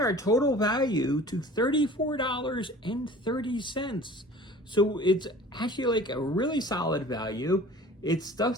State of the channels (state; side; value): normal; both; correlation 0.44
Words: total value to $34.30. So it's actually like a really solid value. It's